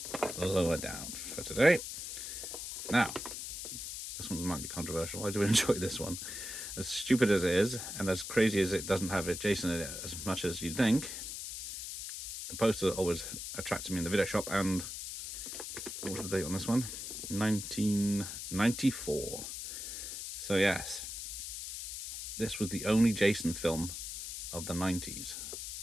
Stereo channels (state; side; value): noise; left; hiss, 7 dB below the sound